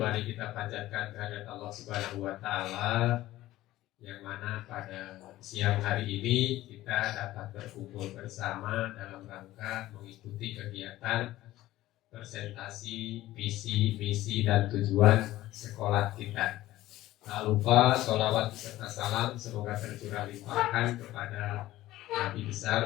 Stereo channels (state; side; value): quieter; right; 15.8 dB